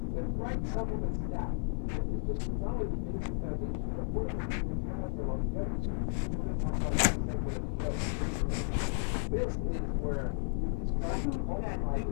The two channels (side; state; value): right; silent; digital silence